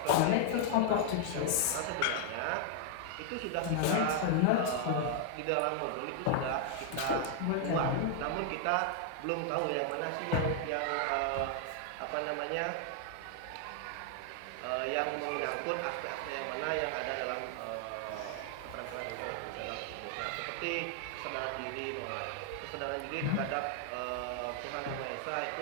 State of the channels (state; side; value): different; both; correlation 0.00